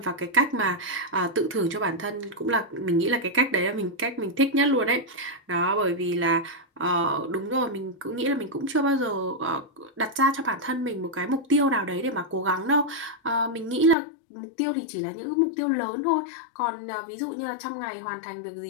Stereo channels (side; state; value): right; drops out; at 14.0 s